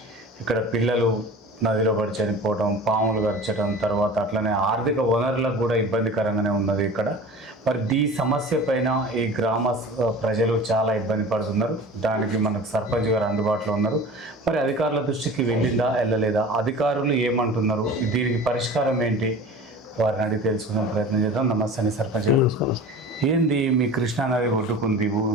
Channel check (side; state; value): both; normal; correlation 0.38